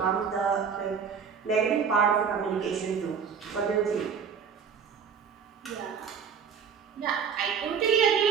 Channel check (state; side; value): quieter; left; 6.7 dB